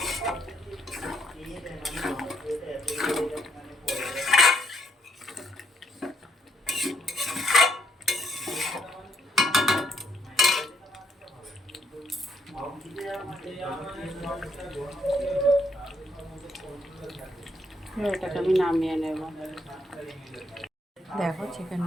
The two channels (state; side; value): normal; both; correlation 0.73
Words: এটাকে আমি নামিয়ে নেব। দেখো